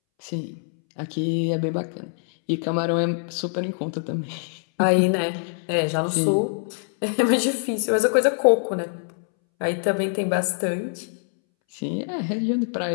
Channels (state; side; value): silent; right; 63 dB below the other